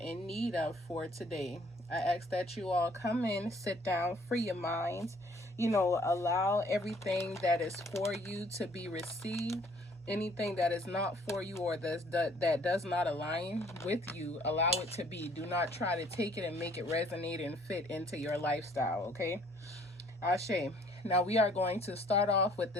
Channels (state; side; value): normal; both; correlation 0.59